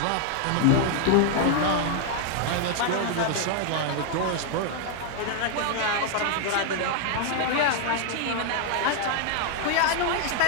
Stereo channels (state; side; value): different; both; correlation 0.00